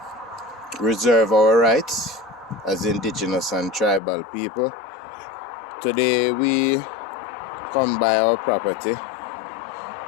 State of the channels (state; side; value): drops out; right; at 4.0 s